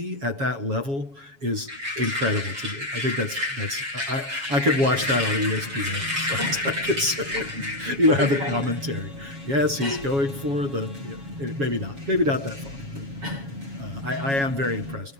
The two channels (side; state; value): left; late; 7.2 ms